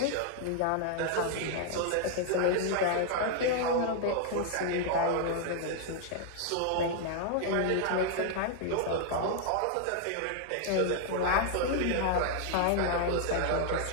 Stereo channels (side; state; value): both; different; correlation 0.00